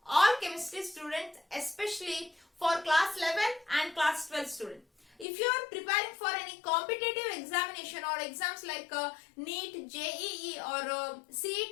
all chemistry students, especially for class 11 and class 12 students. If you are preparing for any competitive examination or exams like NEET, JEE or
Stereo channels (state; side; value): drops out; right; at 5.2 s